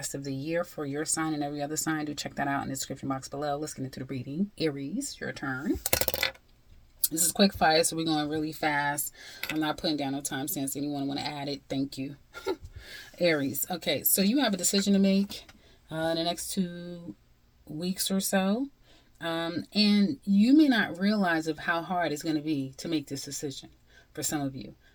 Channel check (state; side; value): identical; both; correlation 1.00